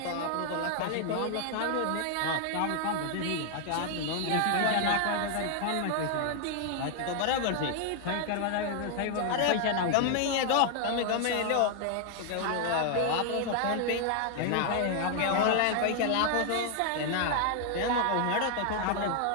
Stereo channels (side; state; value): both; different; correlation 0.00